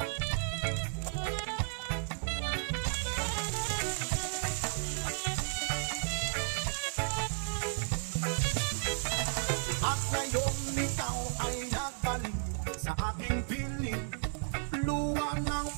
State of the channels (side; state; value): left; silent; digital silence